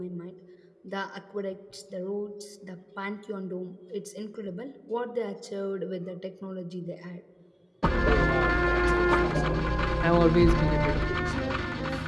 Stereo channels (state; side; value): identical; both; correlation 1.00